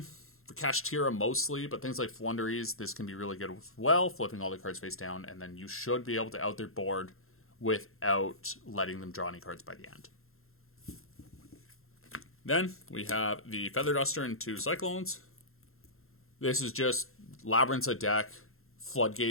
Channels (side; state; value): right; late; 0.62 ms